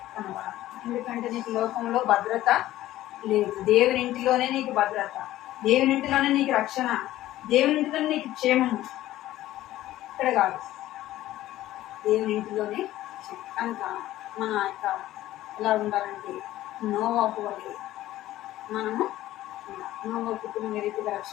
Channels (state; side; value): quieter; right; 14.8 dB